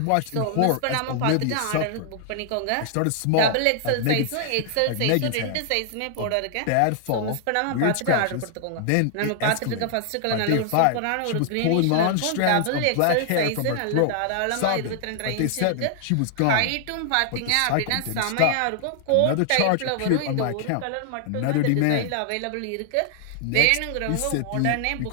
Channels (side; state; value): both; different; correlation 0.00